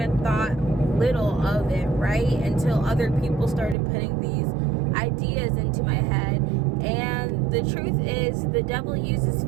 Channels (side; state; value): left; drops out; at 3.8 s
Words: thought little of it, right? Until other people started putting these ideas into my head. And the truth is, the devil uses